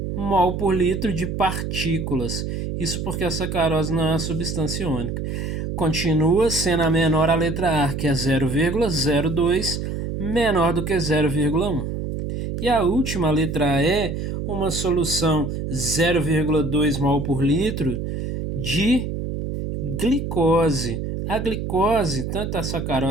mol por litro de partículas. Isso porque a sacarose não é uma substância iônica. Continua sendo a menor a letra A, que é 0,02, menor do que 0,1. E a última, a letra E, uma solução 0,2 mol por litro de glicose. A glicose, tanto a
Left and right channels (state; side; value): noise; right; hum, 4 dB below the sound